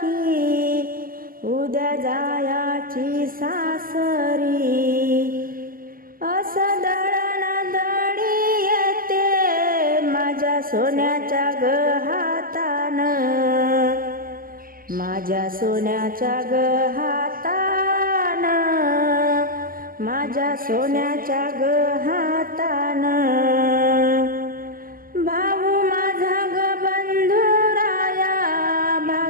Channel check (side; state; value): left; late; 0.42 ms